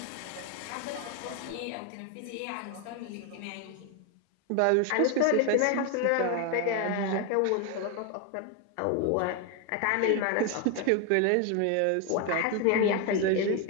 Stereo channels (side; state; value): both; different; correlation 0.01